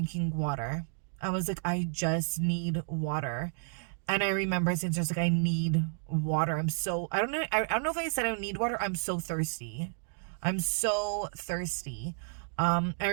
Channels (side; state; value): left; silent; digital silence